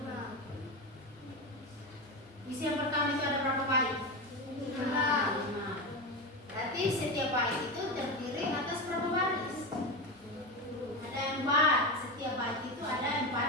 Puisi yang pertama itu ada berapa bait? 5. Berarti setiap bait itu terdiri atas berapa baris? Ada 4. Setiap bait itu ada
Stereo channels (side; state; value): both; normal; correlation 0.19